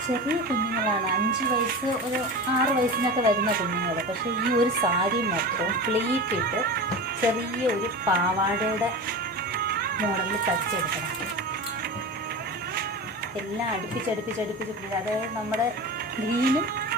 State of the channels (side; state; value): both; normal; correlation 0.29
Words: ചെറിയ കുഞ്ഞുങ്ങളാണ്, 5 വയസ്സ് ഒരു 6 വയസ്സിനൊക്കെ വരുന്ന കുഞ്ഞുങ്ങൾ. പക്ഷേ ഈ ഒരു സാരി മൊത്തം പ്ലീറ്റ് ഇട്ട് ചെറിയ ഒരു പാവാടയുടെ മോഡലിൽ തയ്ച്ചെടുക്കണം. എല്ലാം അടുപ്പിച്ചടുപ്പിച്ചടുപ്പിച്ച്, അതായത് നമ്മുടെ ഗ്രീനും